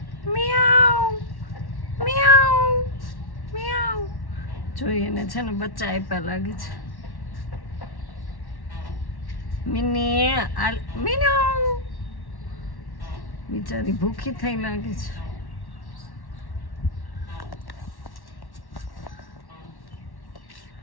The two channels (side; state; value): right; late; 1.1 ms